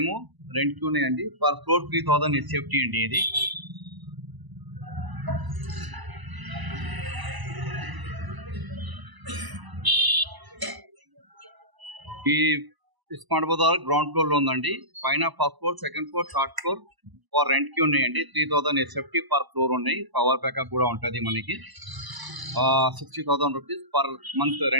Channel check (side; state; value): left; late; 1.0 ms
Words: రెంట్కి ఉన్నాయండి. పర్ ఫ్లోర్ 3000 హెచ్ఎఫ్టీ అండి. ఇది ఈ స్మార్ట్ బజార్ గ్రౌండ్ ఫ్లోర్లో ఉందండి. పైన first floor, second floor, third floor for రెంట్కి ఉన్నాయండి. 3000 హెచ్ఎఫ్టీ పర్ ఫ్లోర్ ఉన్నాయి. పవర్ బ్యాకప్ కూడా ఉంటుంది మనకి. 60,000 రూపీస్ పర్ మంత్